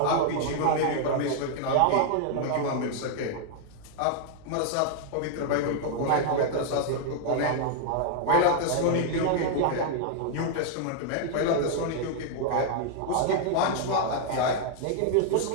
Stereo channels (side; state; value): both; different; correlation -0.01